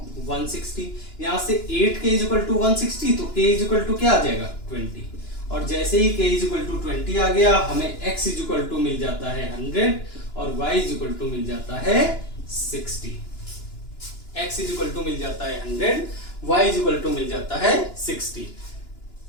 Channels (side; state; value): right; late; 2.9 ms